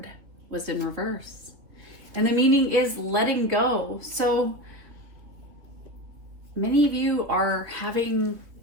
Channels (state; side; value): late; left; 3.2 ms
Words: was in reverse. And the meaning is letting go. So many of you are having